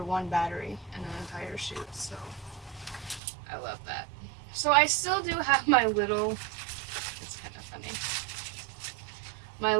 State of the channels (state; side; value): drops out; left; at 3.2 s